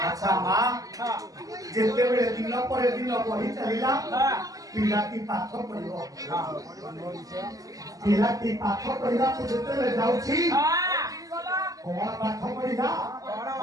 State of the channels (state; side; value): late; left; 0.17 ms